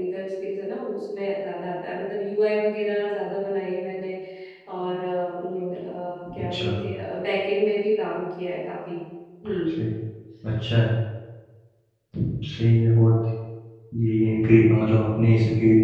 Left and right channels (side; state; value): both; identical; correlation 1.00